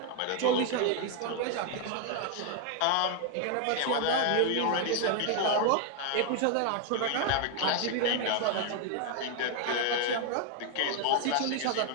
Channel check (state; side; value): different; both; correlation 0.00